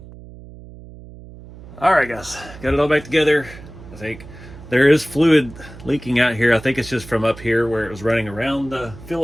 All right, guys, got it all back together. I think there is fluid leaking out here. I think it's just from up here where it was running around the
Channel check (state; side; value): noise; right; hum, 17 dB below the sound